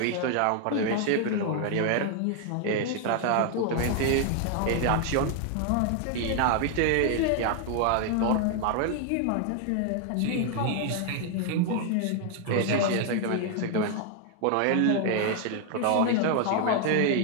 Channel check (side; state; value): both; different; correlation 0.00